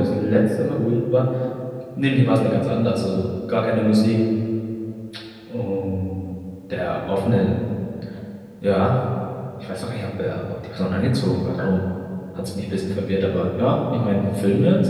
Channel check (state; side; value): identical; both; correlation 1.00